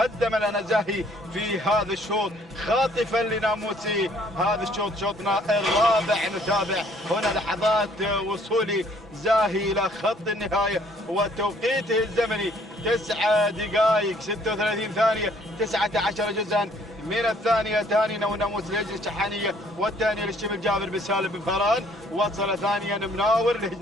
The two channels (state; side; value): normal; both; correlation 0.61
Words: لنا زاهي في هذا الشوط خاطفا لناموسي. هذا الشوط شوطنا الرابع. نتابع هنا لحظات وصول زاهي إلى خط النهاية وتوقيته الزمني 9 دقائق 36 ثانية 19 جزءا من الثانية. ثاني ناموس لهجن الشحانية والثانية للشبل جابر بن سالم بن فاران. وصل ثانيا مناور